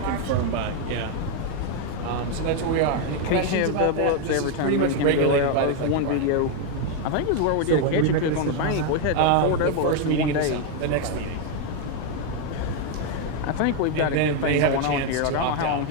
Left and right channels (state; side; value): different; both; correlation 0.01